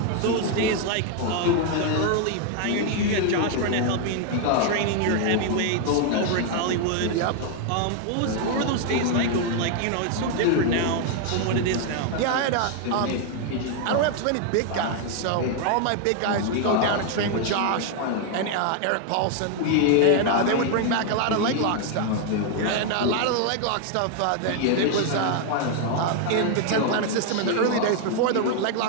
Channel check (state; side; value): different; both; correlation 0.00